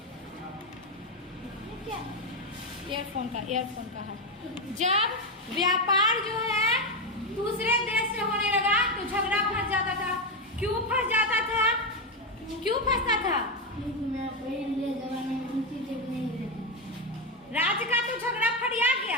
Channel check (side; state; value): both; normal; correlation 0.09